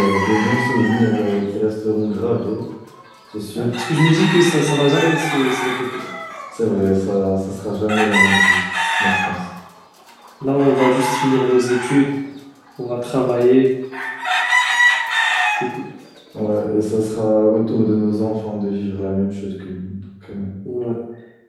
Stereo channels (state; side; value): identical; both; correlation 1.00